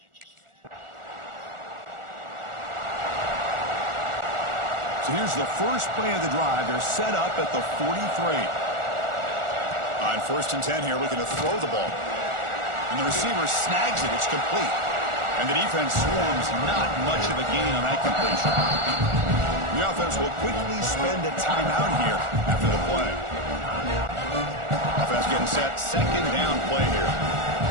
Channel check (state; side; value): late; left; 1.4 ms